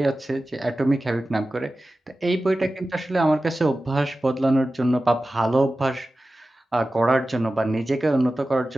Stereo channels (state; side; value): normal; both; correlation 0.95